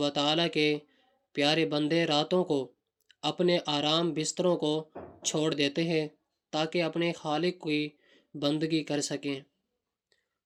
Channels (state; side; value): identical; both; correlation 1.00